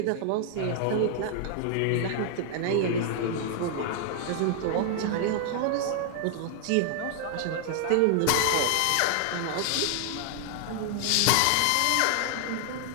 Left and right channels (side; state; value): both; different; correlation 0.00